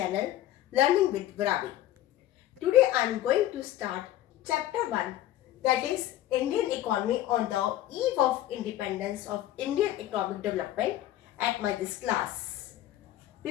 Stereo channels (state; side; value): quieter; right; 13.6 dB